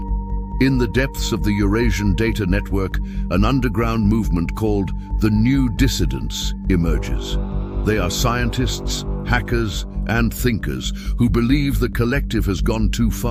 In the depths of the Eurasian data network, an underground movement called the New Dissidents emerges. They are scientists, hackers, and thinkers who believe the collective has gone too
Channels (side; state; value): both; identical; correlation 1.00